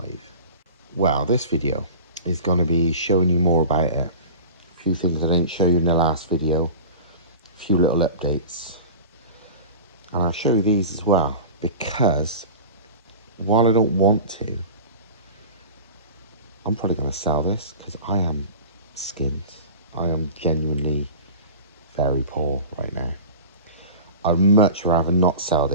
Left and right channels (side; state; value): both; inverted; correlation -0.35